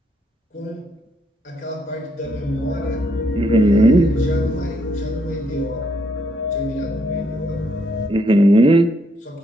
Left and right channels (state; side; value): normal; both; correlation 0.74